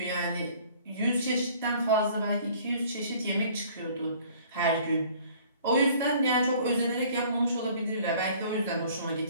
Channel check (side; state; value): both; inverted; correlation -0.53